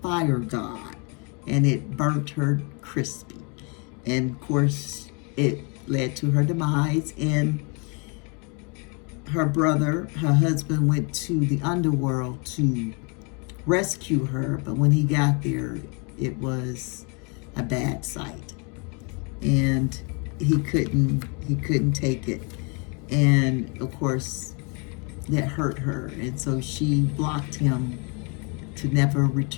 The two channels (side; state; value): right; quieter; 34.3 dB